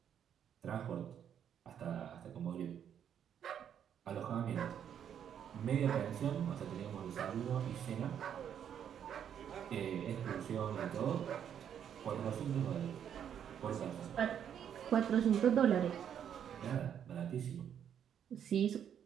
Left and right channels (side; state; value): left; quieter; 8.9 dB